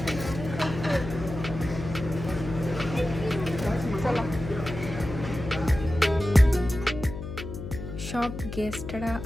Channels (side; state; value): left; noise; hum, 9 dB below the sound